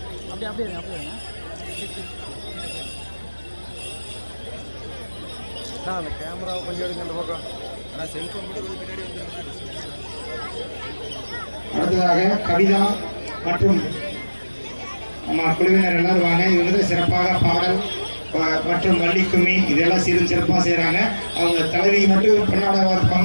அப்படியே அப்படியே அப்படியே அந்த கேமராவை கொஞ்சம் எடுங்க அந்த பக்கம். ஆனால் செல்ஃபோன் கூட கொஞ்சம் பின்னாடி வந்துருங்க. அடுத்ததாக கவிதா மற்றும் நம்ம குழுவினர் எல்லாரும் வாங்க. இது வந்து சிறப்பாக பாடல் மற்றும் வள்ளிக்கும்மி இதெல்லாம் சிறப்பாக செய்கிறாங்க. அவங்க தலைவி மட்டும் பெண்ணாடாக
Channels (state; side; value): inverted; both; correlation -1.00